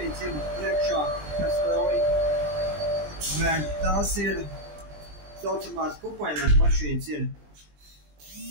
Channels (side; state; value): left; late; 20 ms